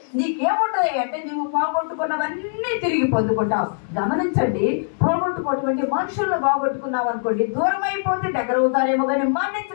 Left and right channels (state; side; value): silent; right; 64 dB below the other